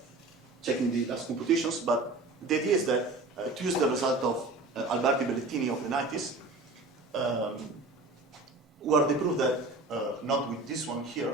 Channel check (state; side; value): quieter; left; 3.1 dB